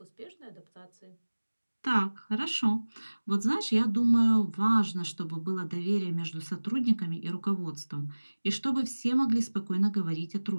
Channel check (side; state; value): both; inverted; correlation -1.00